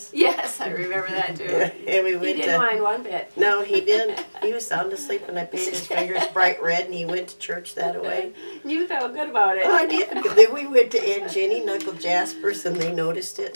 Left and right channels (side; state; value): both; inverted; correlation -1.00